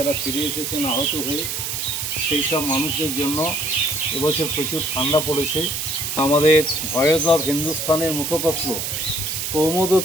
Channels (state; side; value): noise; right; hiss, 3 dB below the sound